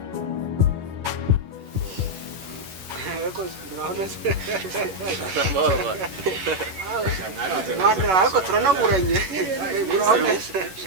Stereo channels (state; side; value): late; left; 11 ms